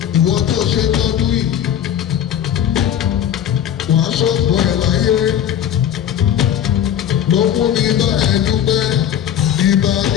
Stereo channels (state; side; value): quieter; right; 9.9 dB